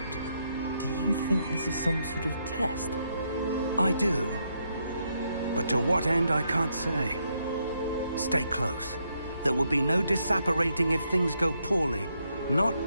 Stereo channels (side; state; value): both; inverted; correlation -0.78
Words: Do you think this is some sort of test? I do. But to what end, I can't say. Stay close. There will be no disapparating if things go poorly. Not